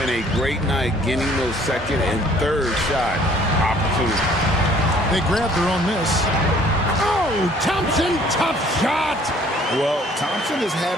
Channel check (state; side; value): normal; both; correlation 0.57